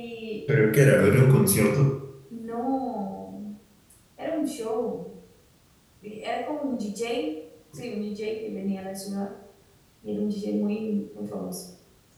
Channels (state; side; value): identical; both; correlation 1.00